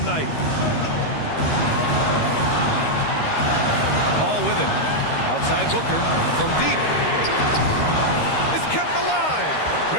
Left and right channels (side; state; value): right; late; 13 ms